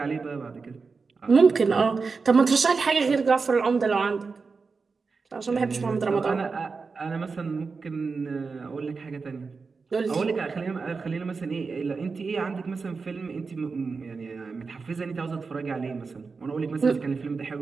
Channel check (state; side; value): quieter; left; 4.6 dB